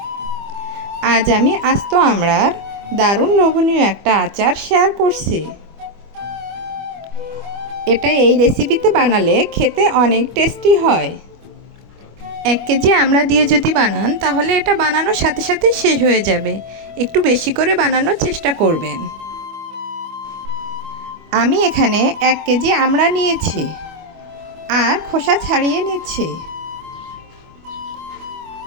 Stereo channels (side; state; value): left; late; 25 ms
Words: আজ আমি আস্ত আমড়ার দারুণ লোভনীয় একটা আচার শেয়ার করছি। এটা এই রেসিপিতে বানালে খেতে অনেক টেস্টি হয়। 1 কেজি আমড়া দিয়ে যদি বানান তাহলে এটা বানানোর সাথে সাথেই শেষ হয়ে যাবে। একটু বেশি করে বানানোর চেষ্টা করবেন। আমি এখানে 1 কেজি আমড়া নিয়েছি আর খোসা ছাড়িয়ে নিচ্ছি।